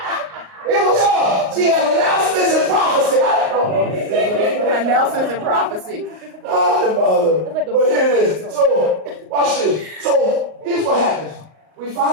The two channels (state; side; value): late; left; 38 ms